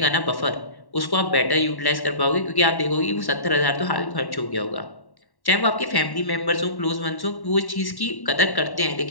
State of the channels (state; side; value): late; right; 1.1 ms